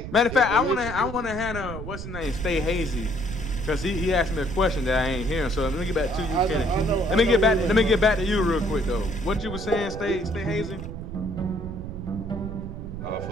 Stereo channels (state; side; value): noise; right; rumble, 8 dB below the sound